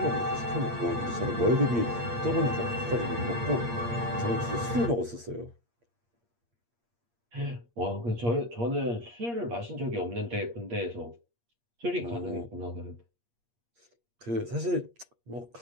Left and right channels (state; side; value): late; left; 8.5 ms